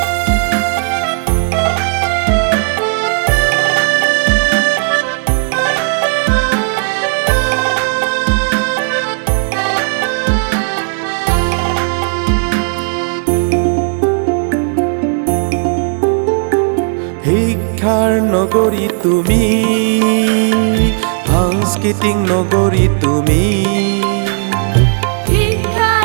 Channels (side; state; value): left; silent; digital silence